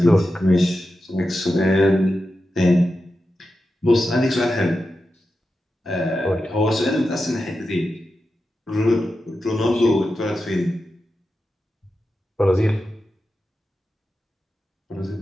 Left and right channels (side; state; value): both; normal; correlation 0.90